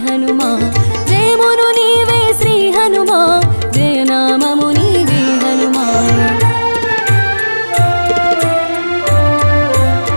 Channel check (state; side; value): inverted; both; correlation -1.00